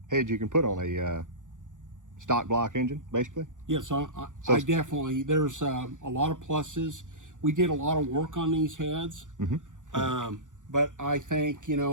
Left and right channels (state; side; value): late; left; 0.87 ms